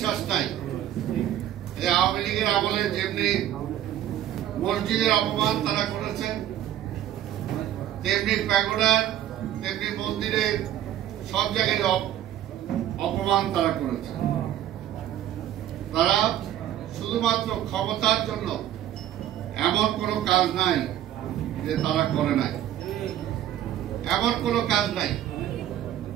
নাই যে আওয়ামী লীগের আমলে যেমনি মসজিদের অপমান তারা করেছেন, তেমনি প্যাগোডার, তেমনি মন্দিরের সব জায়গায় অপমান তারা করেছে। তারা শুধুমাত্র ক্ষমতার জন্য এমন কোনো কাজ নাই যে তারা করে নাই, এমন কোনো কাজ নাই।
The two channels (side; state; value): left; quieter; 11.8 dB